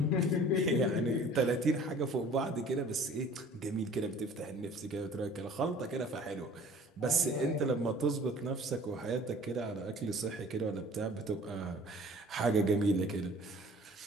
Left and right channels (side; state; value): both; normal; correlation 0.49